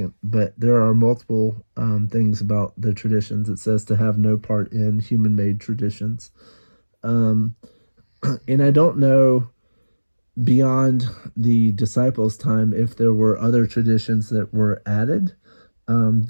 But there are multiple things about the traditions. It says to have no part in human-made traditions. Um, and I don't know beyond the disciples' time if there were other traditions that were added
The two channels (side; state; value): both; inverted; correlation -1.00